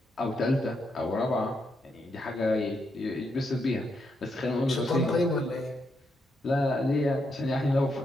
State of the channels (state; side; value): normal; both; correlation 0.80